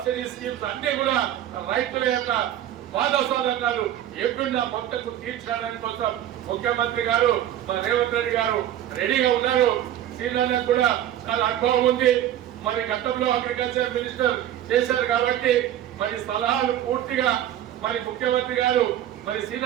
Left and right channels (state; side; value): quieter; left; 11.8 dB